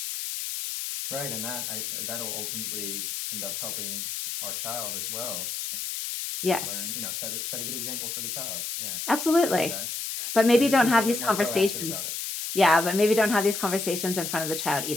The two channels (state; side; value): noise; left; hiss, 4 dB below the sound